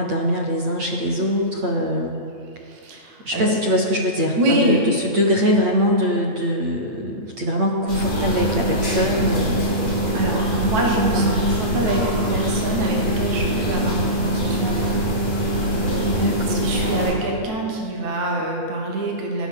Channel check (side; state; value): left; late; 8.6 ms